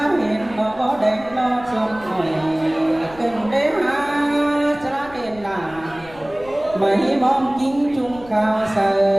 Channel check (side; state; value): left; noise; rumble, 21 dB below the sound